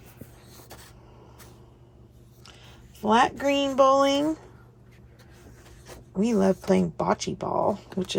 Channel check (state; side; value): identical; both; correlation 1.00